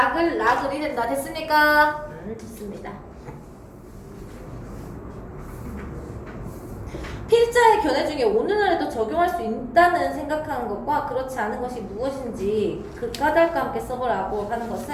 락을이 된다. 됐습니까? 됐습니다. 필자의 견해 중에 오늘날에도 적용할 수 있다는 생각하는 것과 그렇지 않은 것이 무엇인지 그 까닭과 함께 써보라고 하는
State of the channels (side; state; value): both; identical; correlation 1.00